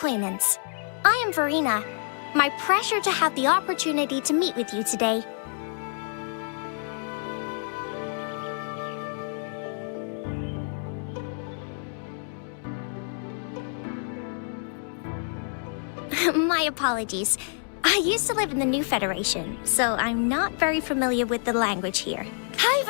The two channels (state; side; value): silent; right; 60 dB below the other